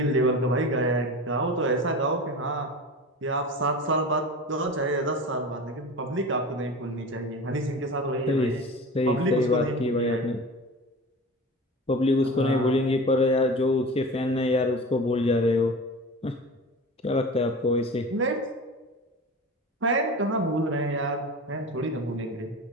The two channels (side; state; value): both; normal; correlation 0.33